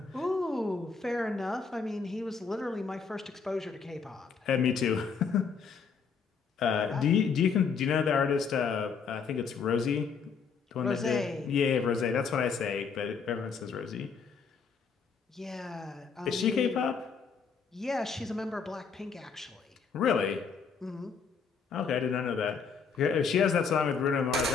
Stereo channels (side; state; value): right; quieter; 5.6 dB